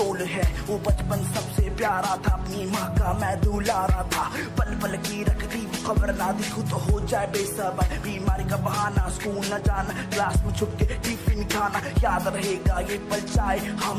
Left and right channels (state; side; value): identical; both; correlation 1.00